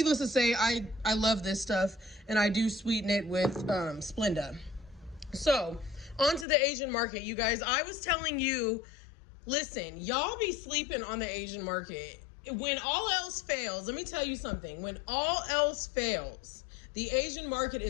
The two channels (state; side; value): drops out; right; at 6.5 s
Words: to say, I love this stuff, and I do sweeten it with Splenda. So, on to the Asian market, you guys. I was telling you, listen, y'all be sleeping on the Asian market. When all else fails, let me tell you something. When all else fails, the Asian market